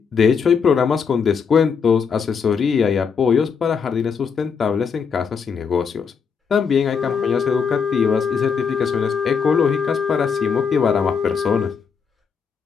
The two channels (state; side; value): quieter; right; 6.1 dB